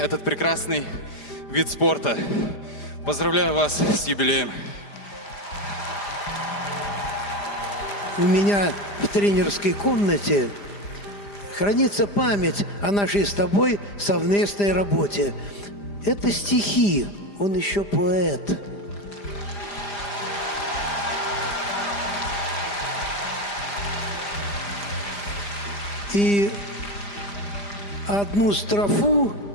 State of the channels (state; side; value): late; right; 5.0 ms